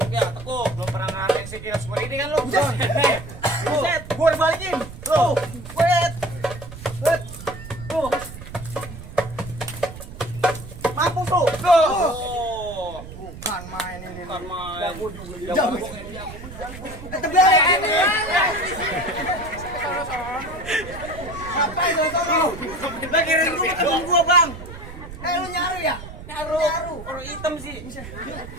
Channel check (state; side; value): noise; right; rumble, 13 dB below the sound